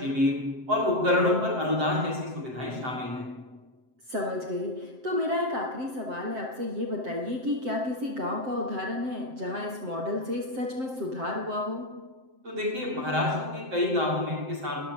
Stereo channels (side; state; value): left; late; 7.7 ms